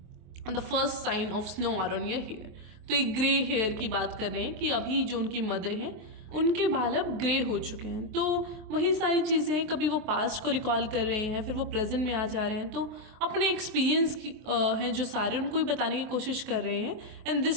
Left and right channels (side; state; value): left; late; 23 ms